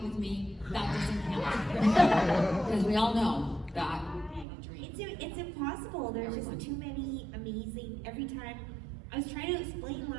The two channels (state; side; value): drops out; left; at 4.5 s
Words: with me, that doesn't count. Because we all know that ain't a dream. It's impossible. There's just too many amazing. Every time I was trying to explain